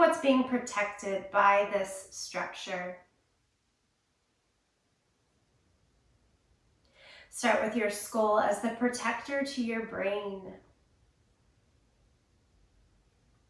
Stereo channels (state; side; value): identical; both; correlation 1.00